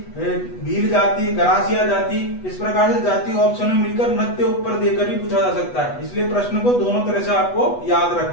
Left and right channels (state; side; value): late; right; 8.2 ms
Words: भील जाति, गरासिया जाति, इस प्रकार से जाति ऑप्शन में मिलकर नृत्य ऊपर देकर भी पूछा जा सकता है। इसलिए प्रश्न को दोनों तरह से आपको याद